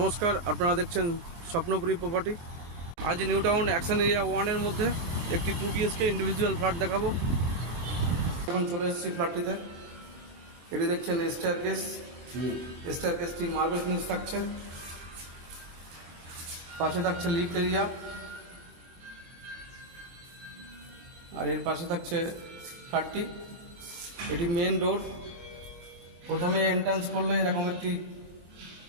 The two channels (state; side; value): late; left; 24 ms